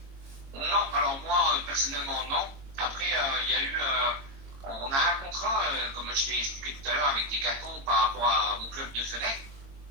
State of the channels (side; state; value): left; late; 22 ms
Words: Non, alors moi personnellement non. Après il y a eu on a un contrat, comme je t'ai expliqué tout à l'heure, avec Decathlon par rapport à mon club de Fenech.